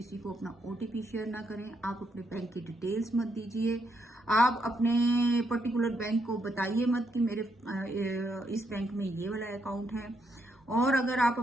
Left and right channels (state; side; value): normal; both; correlation 0.77